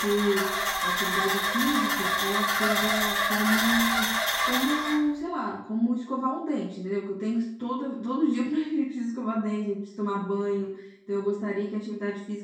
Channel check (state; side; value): identical; both; correlation 1.00